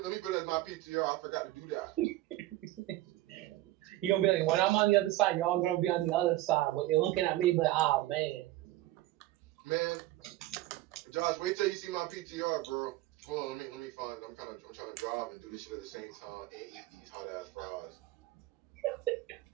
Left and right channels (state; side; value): quieter; left; 16.7 dB